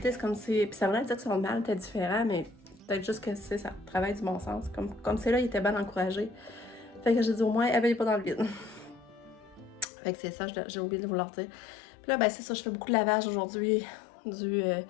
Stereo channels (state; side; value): drops out; right; at 9.9 s